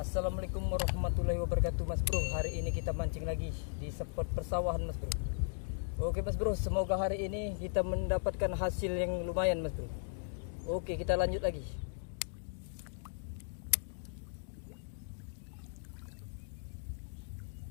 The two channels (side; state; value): right; silent; digital silence